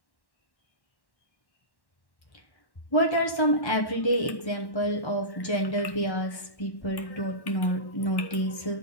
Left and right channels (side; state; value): right; late; 1.1 ms